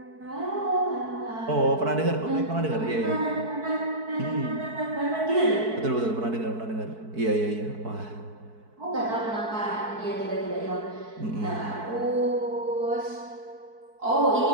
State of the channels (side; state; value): left; late; 4.6 ms